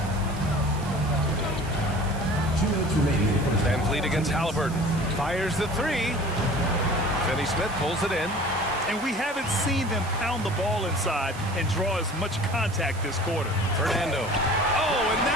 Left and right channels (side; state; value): right; noise; hiss, 18 dB below the sound